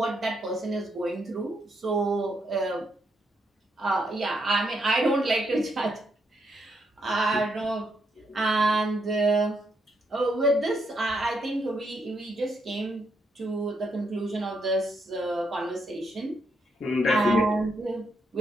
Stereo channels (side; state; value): both; normal; correlation 0.78